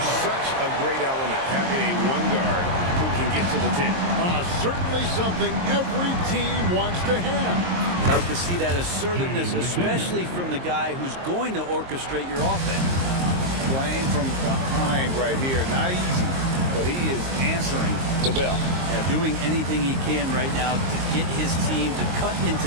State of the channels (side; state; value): left; late; 22 ms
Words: such a great element, having a one guard who can get to the 10. Certainly something every team wants to have. I'd like to see that assertiveness, especially from the guy who's going to orchestrate your offense. Playing from behind right here, not easy, but he is answering the bell. Yeah, doing anything he can right now to get his team to cut